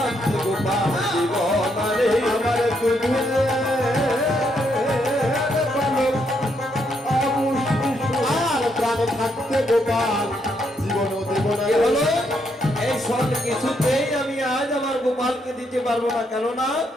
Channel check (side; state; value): both; normal; correlation 0.76